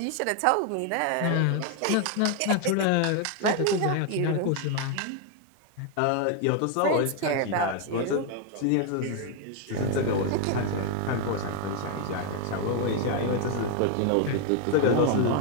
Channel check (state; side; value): different; both; correlation 0.01